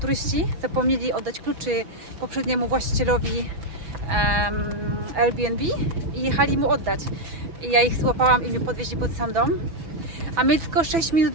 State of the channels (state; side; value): late; left; 6.0 ms